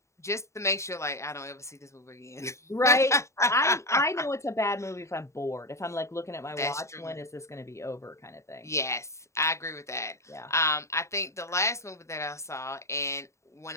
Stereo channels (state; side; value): late; right; 0.14 ms